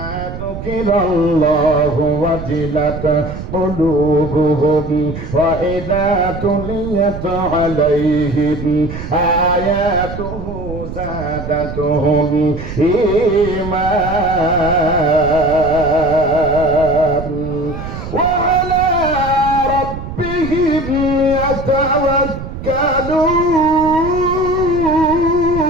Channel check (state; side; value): noise; right; rumble, 9 dB below the sound